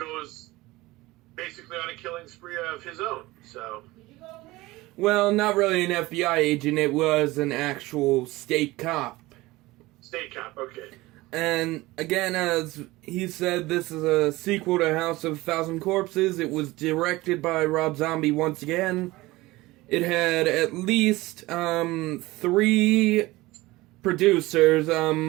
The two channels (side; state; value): left; quieter; 19.7 dB